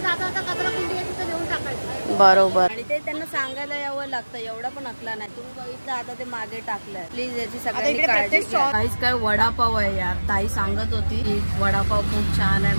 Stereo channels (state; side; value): inverted; both; correlation -1.00